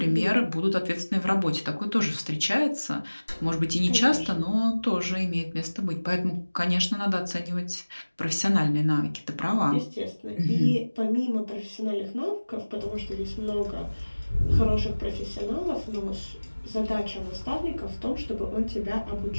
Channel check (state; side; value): inverted; both; correlation -1.00